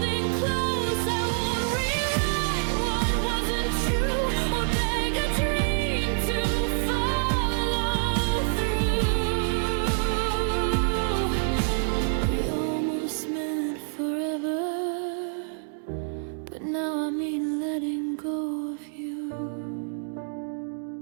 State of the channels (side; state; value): left; silent; digital silence